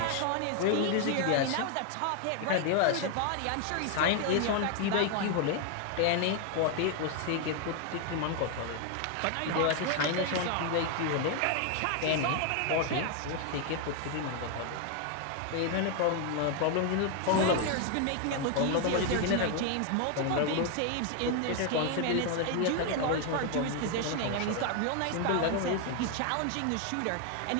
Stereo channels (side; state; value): both; different; correlation 0.01